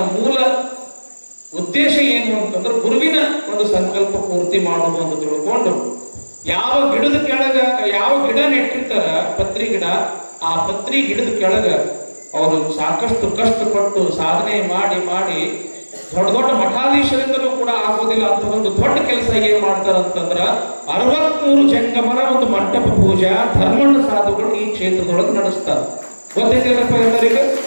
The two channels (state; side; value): inverted; both; correlation -1.00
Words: ಮೂಲ ಉದ್ದೇಶ ಏನು ಅಂತಂದ್ರೆ ಗುರುವಿನ ಒಂದು ಸಂಕಲ್ಪ ಪೂರ್ತಿ ಮಾಡುವುದು ಅಂತ ತಿಳ್ಕೊಂಡು ಯಾವ ಗಿಡದ ಕೆಳಗ ಯಾವ ಗಿಡ ನೆಟ್ಟಿರ್ತಾರ ಪತ್ರಿ ಗಿಡ, ಆ ಪತ್ರಿ ಗಿಡದ ಕೆಳಗ ಅವರು ಸಾಕಷ್ಟು ಕಷ್ಟಪಟ್ಟು ಸಾಧನೆ ಮಾಡಿ ಮಾಡಿ ದೊಡ್ಡ ದೊಡ್ಡ ಮಠಾಧೀಶರಿಂದಲೂ ಕೂಡ ಆಗೋದಿಲ್ಲ ಅಂತ ಒಂದು ದೊಡ್ಡ ಕೆಲಸ ಏನ್ ಮಾಡ್ತಾರಂತಂದ್ರ 63 ಜಂಗಮರ ಒಂದು ಮಂಟಪ ಪೂಜಾ ಧರ್ಮಣ್ಣ ಸಾಧುಗಳು ಈ ಕ್ಷೇತ್ರದೊಳಗೆ ನಡೆಸ್ತಾರೆ. ಗೊತ್ತೈತಿಲ್ಲಪ್ಪ ಎಲ್ಲರಿಗೂ?